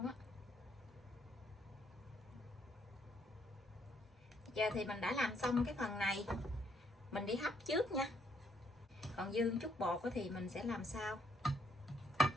á. Giờ thì mình đã làm xong cái phần này, mình đi hấp trước nha. Còn dư chút bột thì mình sẽ làm sau.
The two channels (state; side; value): normal; both; correlation 0.70